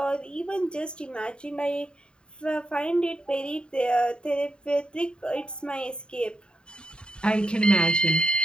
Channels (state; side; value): late; right; 0.051 ms